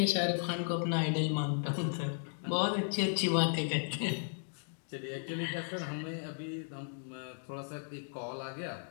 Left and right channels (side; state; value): right; silent; digital silence